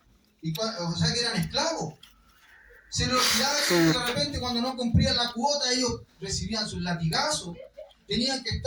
O sea, que eran esclavos. Se les olvidaba que de repente cuando no cumplían la cuota, ellos recibían sus latigazos. Tenían que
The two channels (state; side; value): identical; both; correlation 1.00